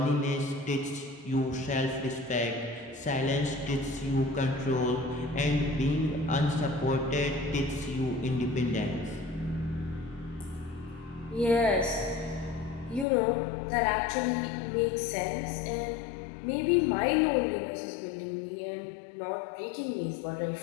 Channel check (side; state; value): right; drops out; at 13.1 s